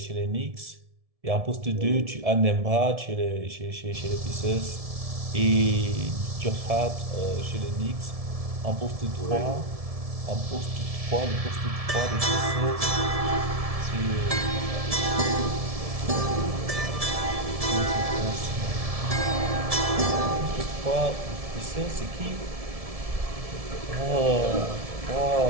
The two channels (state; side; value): late; left; 1.7 ms